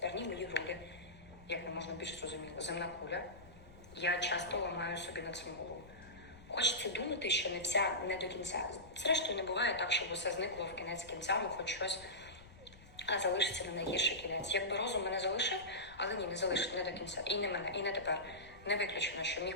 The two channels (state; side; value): noise; left; rumble, 21 dB below the sound